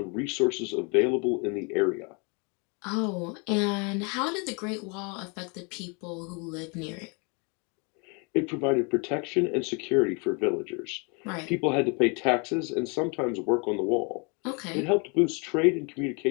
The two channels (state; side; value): quieter; right; 33.1 dB